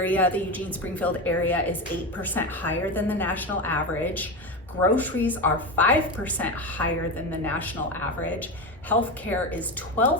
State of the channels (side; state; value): both; normal; correlation 0.19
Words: the Eugene Springfield area, is 8% higher than the national average. Groceries are 5% higher than the national average. Healthcare is